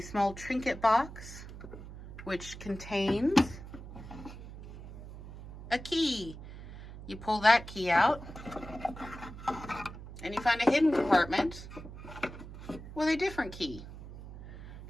trinket box, which contains a key You pull that key out, and you find a hidden compartment with a different key.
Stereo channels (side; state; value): right; noise; hum, 13 dB below the sound